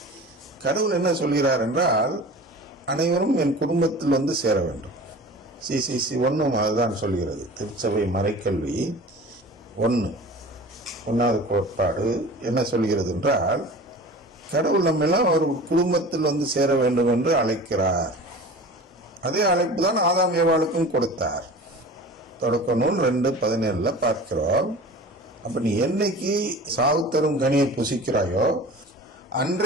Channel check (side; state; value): both; normal; correlation 0.38